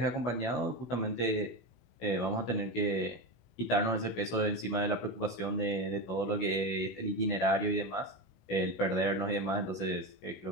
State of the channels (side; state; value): right; late; 16 ms